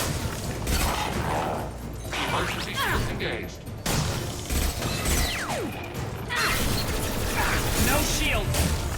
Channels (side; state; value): both; identical; correlation 1.00